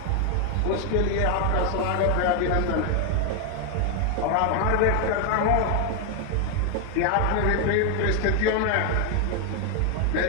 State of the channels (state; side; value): different; both; correlation 0.01